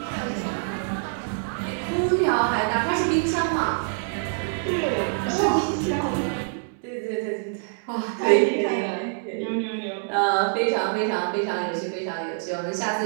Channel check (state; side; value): silent; left; 61 dB below the other